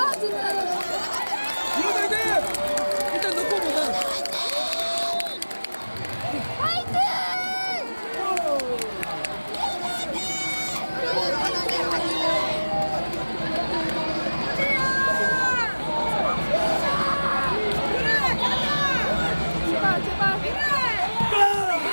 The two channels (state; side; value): inverted; both; correlation -1.00